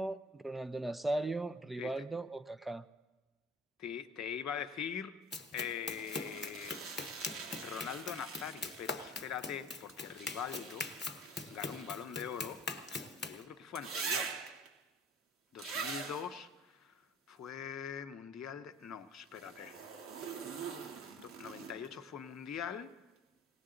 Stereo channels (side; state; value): both; normal; correlation 0.47